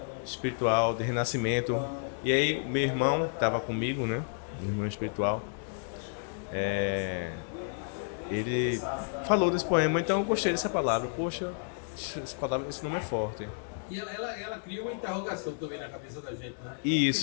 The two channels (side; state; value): right; silent; digital silence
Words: espiritual, de renascimento. E aí meu irmão tava comigo, né? Meu irmão espiritual. Ele falou desse poema, então eu gostei dessa palavra. Poxa, esse nome é forte. E ela cria uma interrogação também na cabeça da gente, né? Isso.